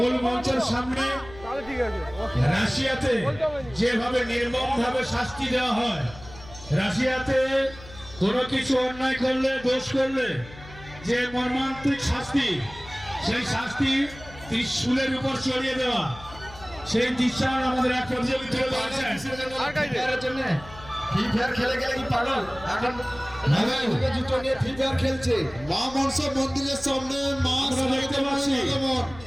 মঞ্চের সামনে রাশিয়াতে যেভাবে নির্মম ভাবে শাস্তি দেওয়া হয়, রাশিয়াতে কোনো কিছু অন্যায় করলে দোষ করলে যে মর্মান্তিক শাস্তি, সেই শাস্তি ত্রিশূলের উপর চড়িয়ে দেওয়া, সেই দৃশ্যায়ন আমাদের এক প্রতিযোগী তুলে ধরেছেন। ফ্রি ফায়ার খেলে গেলে কি পাগল? এখন জুতো নিয়ে ফ্রি ফায়ার খেলছে। মা মনসা মন্দিরের সামনে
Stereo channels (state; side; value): noise; left; hum, 18 dB below the sound